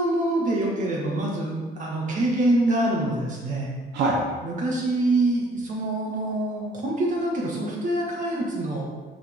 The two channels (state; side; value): normal; both; correlation 0.60